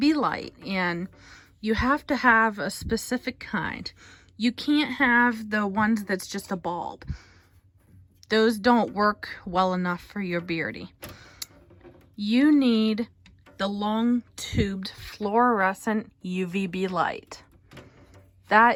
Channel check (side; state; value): both; identical; correlation 1.00